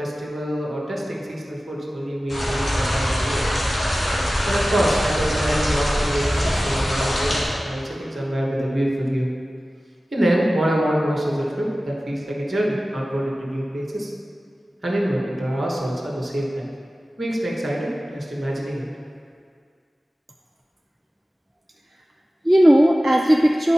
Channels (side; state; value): both; normal; correlation 0.96